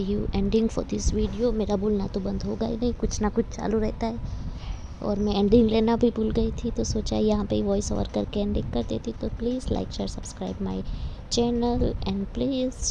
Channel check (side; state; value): both; identical; correlation 1.00